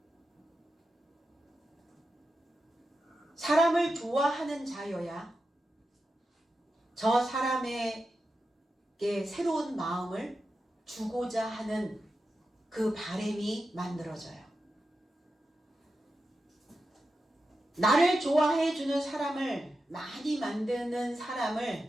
사람을 좋아하는 자여야 저 사람에게 새로운 마음을 주고자 하는 그 바람이 만들어져요. 나를 좋아해 주는 사람을 많이 만드는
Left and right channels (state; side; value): normal; both; correlation 0.90